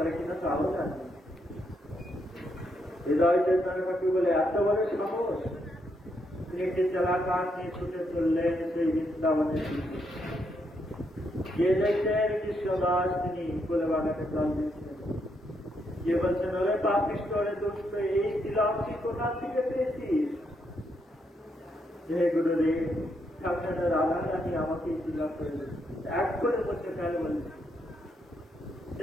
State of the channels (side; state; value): both; normal; correlation 0.78